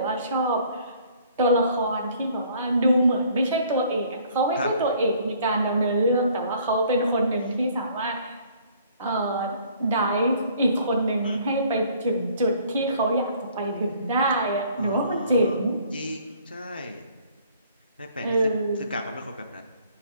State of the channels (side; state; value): both; inverted; correlation -0.58